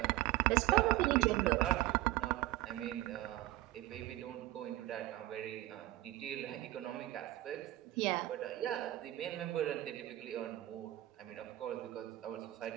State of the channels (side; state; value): left; quieter; 16.4 dB